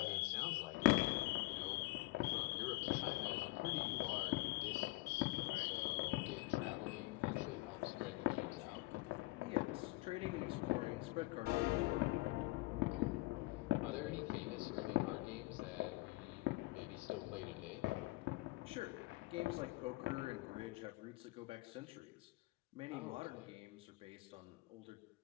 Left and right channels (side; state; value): right; quieter; 21.5 dB